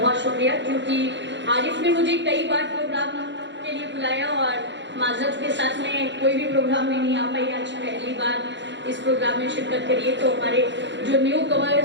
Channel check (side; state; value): left; late; 0.52 ms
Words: शुक्रिया, क्योंकि आरिफ ने मुझे कई बार प्रोग्राम के लिए बुलाया और माजरत के साथ में कोई भी प्रोग्राम में नहीं आ पाई। आज पहली बार इस प्रोग्राम में शिरकत करिए। तो हमारे जो न्यू